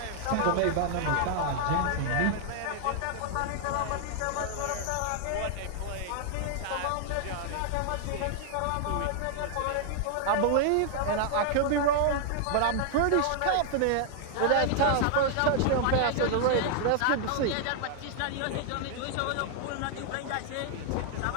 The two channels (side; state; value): both; different; correlation 0.00